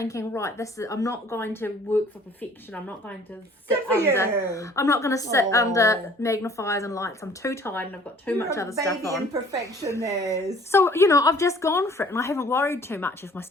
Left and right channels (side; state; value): both; normal; correlation 0.53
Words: right, I'm not going to work for perfection. I'm not going to sit under. I'm not going to sit under magnifiers and lights. I'm too tired and I've got too much other stuff Baby on. imperfectionist. So, you know, I've just gone for it, and I haven't worried too much if my